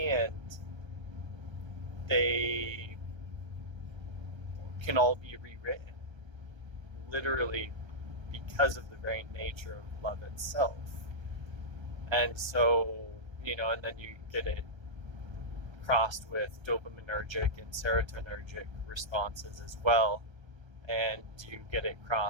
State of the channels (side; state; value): left; late; 1.3 ms